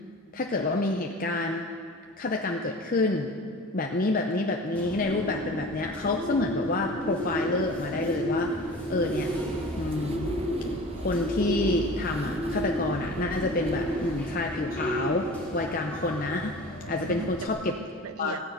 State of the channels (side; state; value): both; normal; correlation 0.39